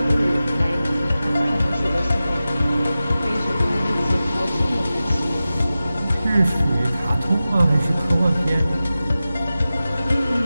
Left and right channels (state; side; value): inverted; both; correlation -0.95